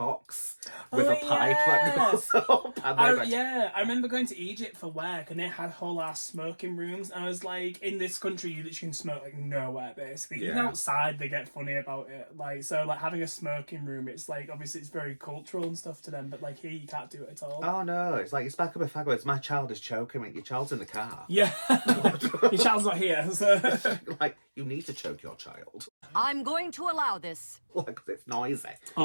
with a pipe that goes up. I remember going to Egypt for work and they had whole ass smoking rooms. And I was like, in this country, you literally can smoke like nowhere, basically. Even outside, they get funny about it. Like, so like having a smoking room, it's like obviously it's very cultural and stuff to them, but like here you can't do it at all. Oh no, it's like it's back up a fag. It's my child is choking me. Your child's in the car. Yeah, your child's not here. So. Like, you need to choke your child. I'm going to allow this. Like, it's noisy.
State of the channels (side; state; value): both; inverted; correlation -1.00